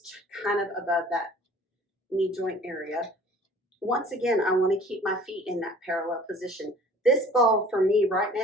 kind of above that knee joint area. Once again, I want to keep my feet in that parallel position. This ball for me right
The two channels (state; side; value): normal; both; correlation 0.49